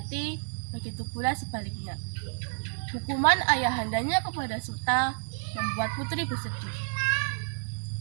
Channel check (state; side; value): silent; left; 55 dB below the other